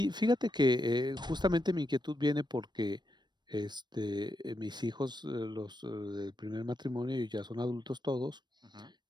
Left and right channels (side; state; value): left; late; 0.21 ms